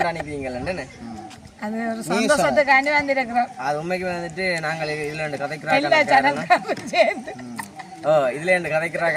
அது ஒரு சந்தோஷத்துக்காண்டி வந்திருக்கிறோம். அது உண்மைக்கு வந்துட்டு நாங்கள் இதில் ரெண்டு எல்லா கதைக்கிறாங்க. சேனல்காரும் சேர்ந்து இதுல ரெண்டு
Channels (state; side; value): identical; both; correlation 1.00